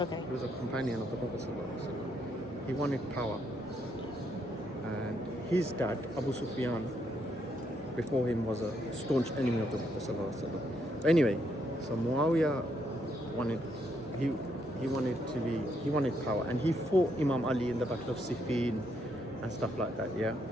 He was a companion of the Prophet ﷺ. He wanted power. And his dad, Abu Sufyan, before him, was a staunch enemy of the Prophet ﷺ. Anyway, so Muawiyah wanted, he wanted power, and he fought Imam Ali in the Battle of Siffin and stuff like that. Yeah,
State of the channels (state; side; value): normal; both; correlation 0.75